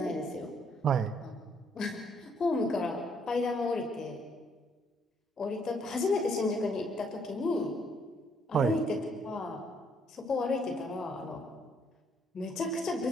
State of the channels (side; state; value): both; normal; correlation 0.68